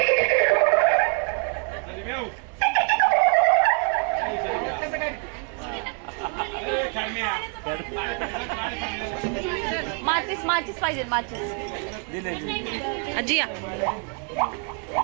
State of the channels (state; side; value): quieter; left; 37.5 dB